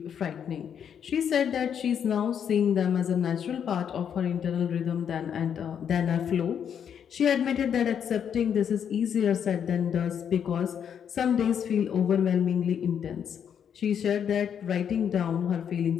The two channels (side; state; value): right; quieter; 8.2 dB